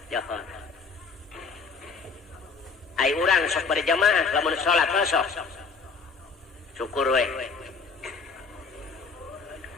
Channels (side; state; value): right; quieter; 4.8 dB